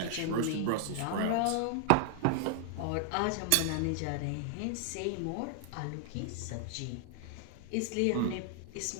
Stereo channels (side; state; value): both; different; correlation 0.00